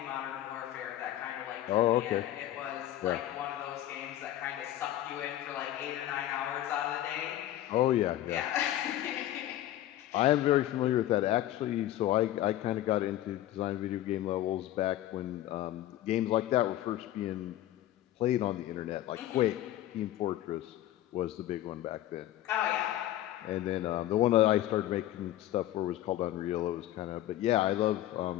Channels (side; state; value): right; quieter; 13.7 dB